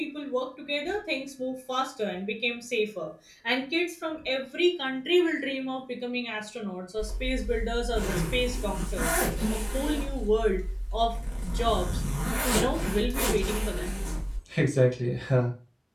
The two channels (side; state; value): both; identical; correlation 1.00